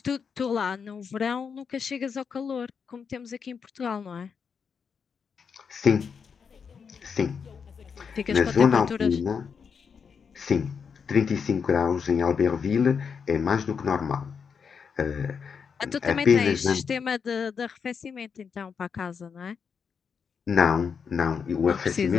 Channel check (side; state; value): right; quieter; 6.3 dB